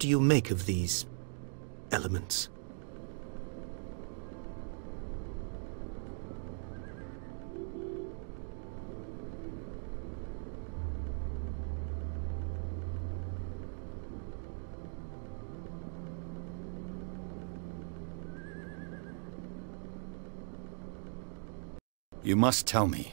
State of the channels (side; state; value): left; silent; digital silence